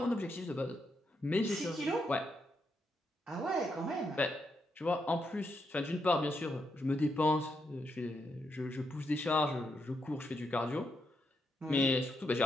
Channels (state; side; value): normal; both; correlation 0.81